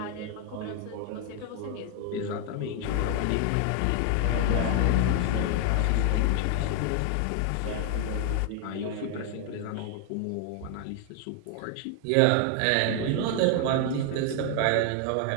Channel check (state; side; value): different; both; correlation 0.00